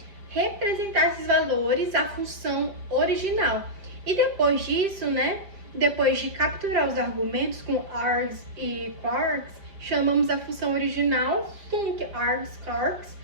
representar esses valores à função original. E depois disso, né, depois de capturar os argumentos com args e quarks, chamamos a função original func args quarks.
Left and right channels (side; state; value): left; late; 5.0 ms